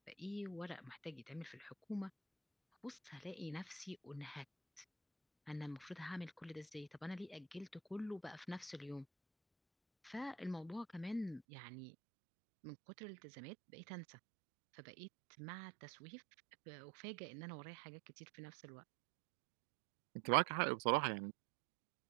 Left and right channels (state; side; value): drops out; left; at 11.4 s